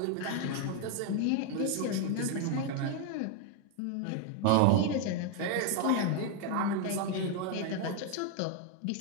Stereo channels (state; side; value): different; both; correlation 0.00